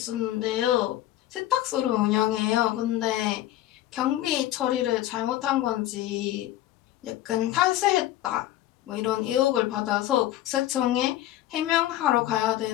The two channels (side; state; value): right; quieter; 14.2 dB